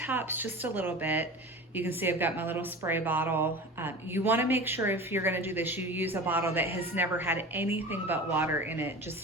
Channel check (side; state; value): both; normal; correlation 0.34